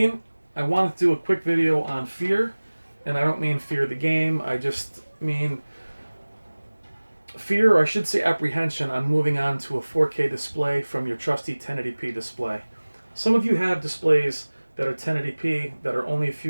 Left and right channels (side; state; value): both; inverted; correlation -1.00